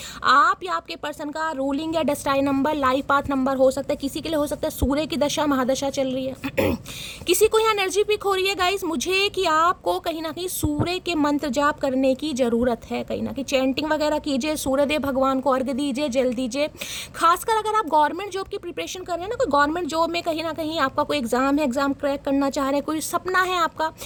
आप या आपके पर्सन का रूलिंग या destined number, life path number हो सकता है, किसी के लिए हो सकता है सूर्य की दशा महादशा चल रही है। किसी को यहाँ एनर्जी पिक हो रही है गाइस मुझे कि आपको कहीं ना कहीं सूर्य के मंत्र जाप करने की ज़रूरत है, कहीं ना कहीं चैंटिंग वगैरह कीजिए, सूर्यदेव भगवान को अर्घ्य दीजिए, जल दीजिए। खासकर अगर आप गवर्नमेंट जॉब की प्रिपरेशन कर रहे हैं ना, कोई गवर्नमेंट जॉब में कहीं ना कहीं आपका कोई एग्जाम है, एग्जाम क्रैक करना चाह रहे हैं, कोई सपना है आपका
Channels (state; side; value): identical; both; correlation 1.00